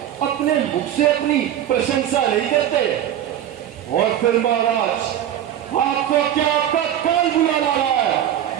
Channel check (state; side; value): quieter; left; 11.0 dB